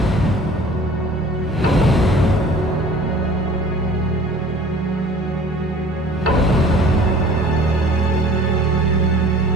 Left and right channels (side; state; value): both; normal; correlation 0.48